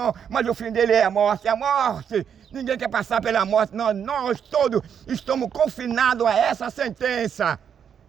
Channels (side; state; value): left; quieter; 7.9 dB